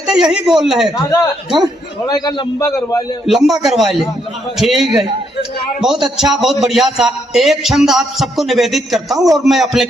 थे यही बोल रहे थे, थोड़ा का लंबा करवा ले। ठीक है, बहुत अच्छा, बहुत बढ़िया सा। एक छंद आप सबको निवेदित करता हूँ और मैं अपने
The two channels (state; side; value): normal; both; correlation 0.75